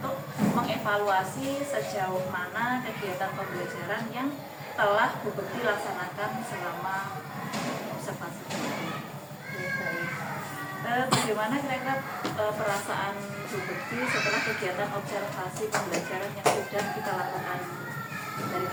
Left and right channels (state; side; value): identical; both; correlation 1.00